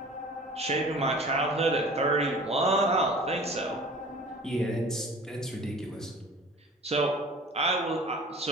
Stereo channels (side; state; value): both; normal; correlation 0.44